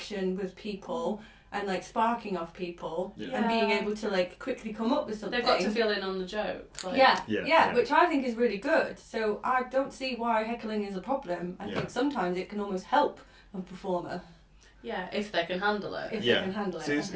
with people and like sparking off people and being able to like quickly come up with something. They've got to feel in on the joke. Like. Yeah, which I think is really good. So I don't see why heckling is a problem. I think sometimes it can almost help a performer. Yeah, if they can handle it. If they can handle it. See, it's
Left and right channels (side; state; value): both; identical; correlation 1.00